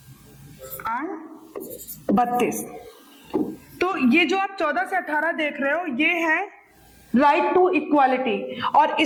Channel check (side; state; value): both; identical; correlation 1.00